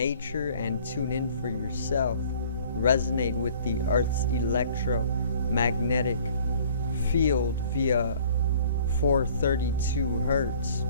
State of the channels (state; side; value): inverted; both; correlation -0.53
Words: and tune in for yourself. Resonate with the Earth's electromagnetic field via 432 hertz,